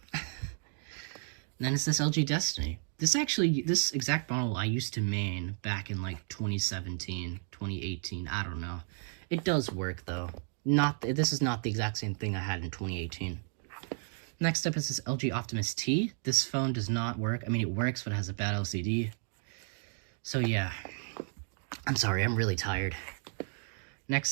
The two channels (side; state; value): left; silent; 55 dB below the other